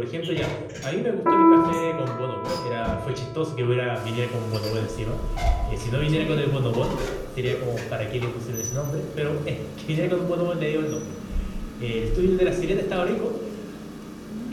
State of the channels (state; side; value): identical; both; correlation 1.00